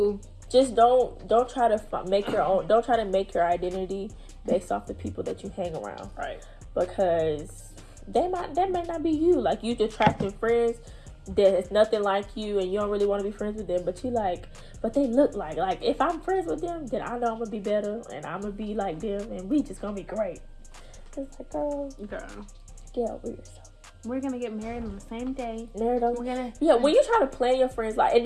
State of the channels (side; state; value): both; identical; correlation 1.00